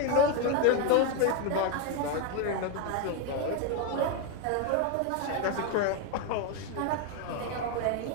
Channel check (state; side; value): different; both; correlation 0.01